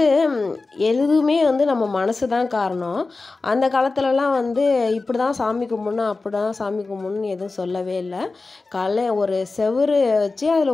எதுவுமே நம்ம மனசு தான் காரணம். அந்த காலத்துலலாம் இப்படி தான் சாமி கும்பிடணும், அப்படி தான் சாமி கும்பிடணும்னு எதுவும் சொல்லவே இல்லை. காலைல ஒரு செவுரு வச்சு அதில்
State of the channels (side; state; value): right; quieter; 3.7 dB